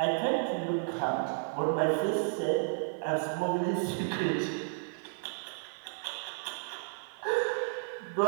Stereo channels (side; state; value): left; silent; 56 dB below the other